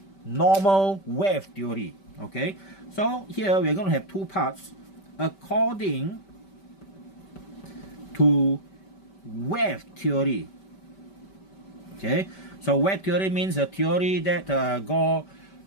normal wave theory? Okay, so here we're going to have two parts according to wave theory. Okay, so wave theory means a theory that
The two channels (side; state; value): right; late; 5.2 ms